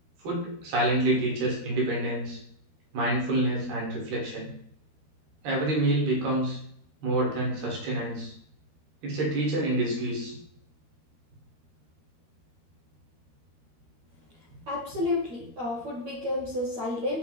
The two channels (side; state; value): left; late; 13 ms